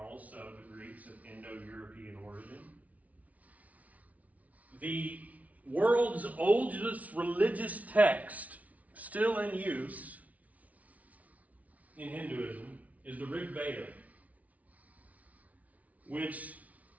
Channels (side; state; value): left; late; 0.070 ms